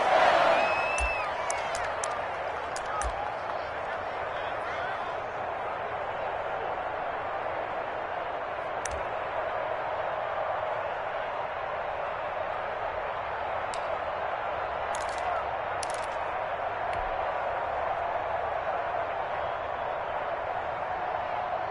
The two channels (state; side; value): identical; both; correlation 1.00